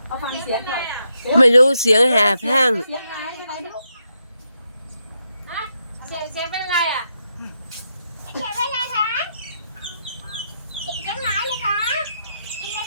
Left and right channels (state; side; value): inverted; both; correlation -0.82